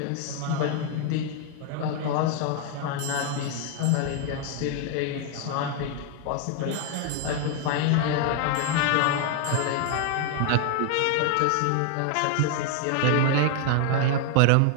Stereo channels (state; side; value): different; both; correlation 0.00